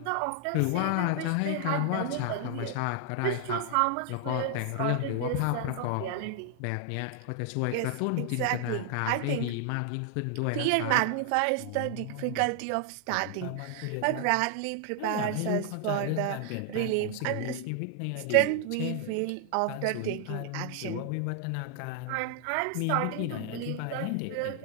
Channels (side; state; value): both; different; correlation 0.00